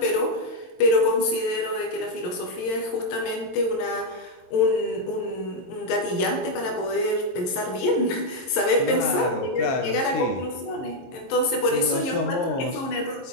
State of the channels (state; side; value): late; right; 22 ms